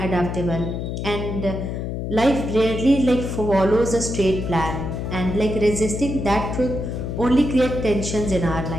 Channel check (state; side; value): noise; left; hum, 4 dB below the sound